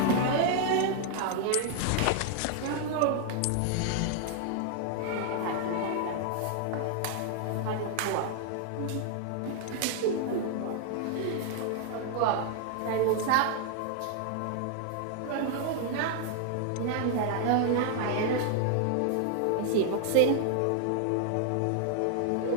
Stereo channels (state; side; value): different; both; correlation 0.00